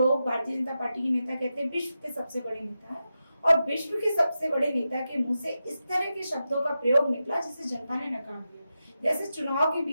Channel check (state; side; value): inverted; both; correlation -0.90